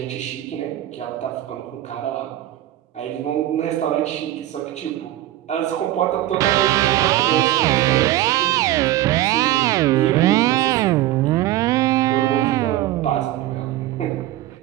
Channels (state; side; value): quieter; left; 14.5 dB